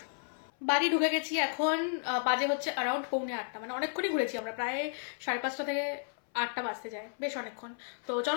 বাড়ি ঢুকে গেছি এখন, বাজে হচ্ছে অ্যারাউন্ড 7:45, মানে অনেকক্ষণই ঘুরেছি আমরা, প্রায় 5:30 থেকে 8টা বাজতে যায়, বেশ অনেকক্ষণ। তো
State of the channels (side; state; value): right; silent; 56 dB below the other